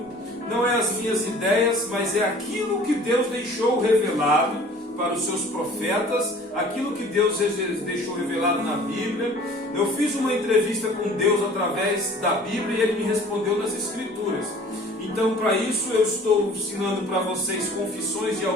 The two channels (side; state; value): both; normal; correlation 0.48